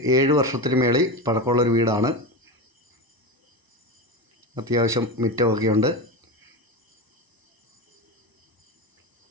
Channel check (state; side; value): late; left; 1.0 ms